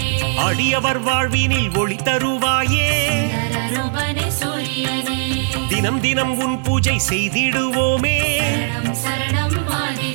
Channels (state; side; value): silent; left; digital silence